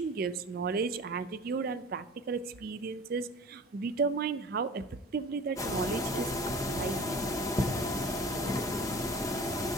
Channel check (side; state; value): both; normal; correlation 0.40